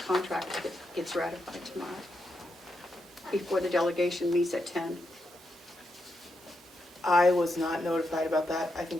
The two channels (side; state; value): both; normal; correlation 0.84